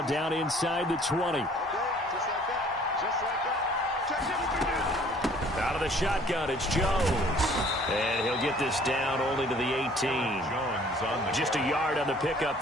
down inside the 20. Out of the shotgun, it's Jones. And he'll get this down only to the 18. Just a yard on the pickup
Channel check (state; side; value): normal; both; correlation 0.55